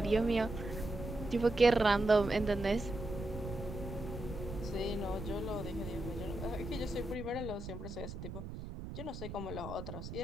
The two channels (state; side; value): noise; right; rumble, 8 dB below the sound